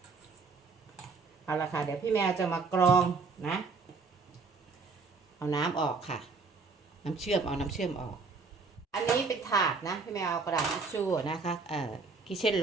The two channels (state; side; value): quieter; left; 4.3 dB